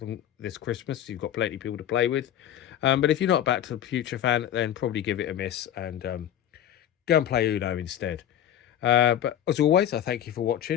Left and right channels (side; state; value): right; quieter; 10.9 dB